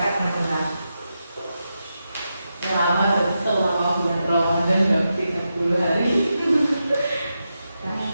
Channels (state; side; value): inverted; both; correlation -0.88